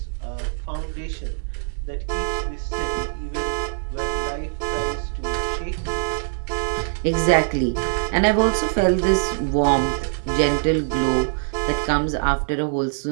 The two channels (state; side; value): silent; left; digital silence